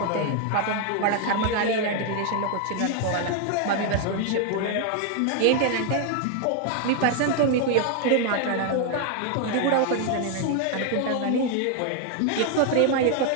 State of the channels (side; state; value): both; different; correlation 0.00